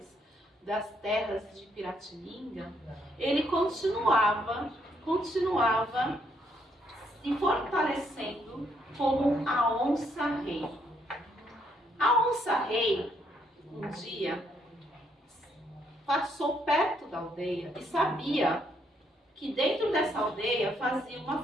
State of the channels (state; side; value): normal; both; correlation 0.73